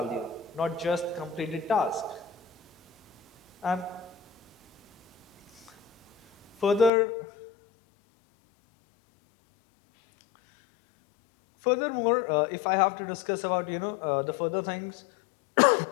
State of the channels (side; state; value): right; drops out; at 6.9 s